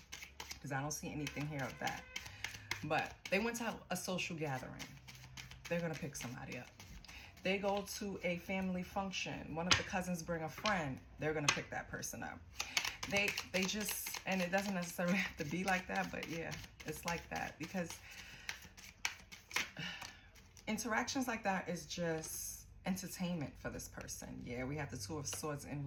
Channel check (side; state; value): both; identical; correlation 1.00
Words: because I don't see anything here of that, but they went to a social gathering, they're going to pick somebody up. They go to a family function, one of the cousins bring a friend, they're going to pick that person up. They just, and it doesn't necessarily have to be like that, but yeah, it's like that, because interactions like that is just entertainment for this person. Yeah, we have the Two of Swords in